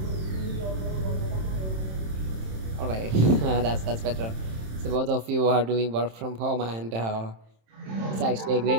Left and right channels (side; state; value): left; late; 27 ms